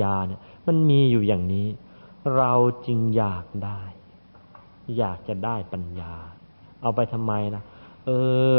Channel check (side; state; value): both; inverted; correlation -1.00